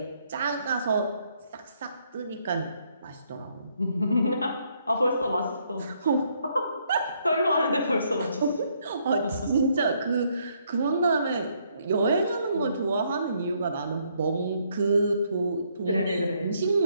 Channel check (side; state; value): both; inverted; correlation -0.71